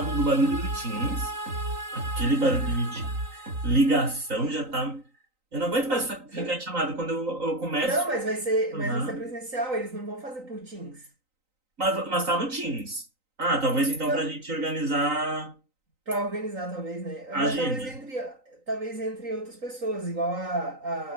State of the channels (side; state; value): left; late; 3.9 ms